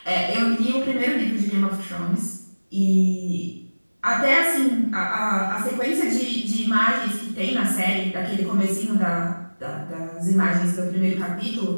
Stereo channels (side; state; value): both; inverted; correlation -1.00